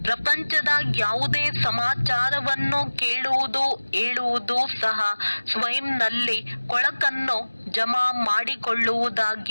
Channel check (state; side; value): inverted; both; correlation -1.00